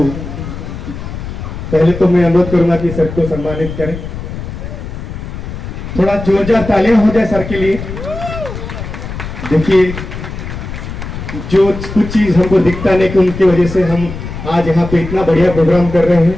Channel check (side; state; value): left; noise; rumble, 8 dB below the sound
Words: पहले तो मैं अनुरोध करूंगा कि सर को सम्मानित करें। थोड़ा जोरदार तालियां हो जाए सर के लिए। देखिए जो कुछ चीज हमको दिखता नहीं कि उनकी वजह से हम आज यहाँ पे इतना बढ़िया प्रोग्राम कर रहे हैं,